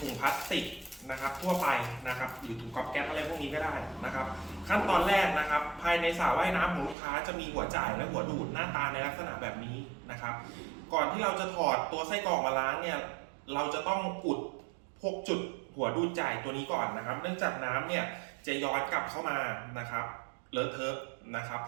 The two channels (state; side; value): drops out; left; at 7.0 s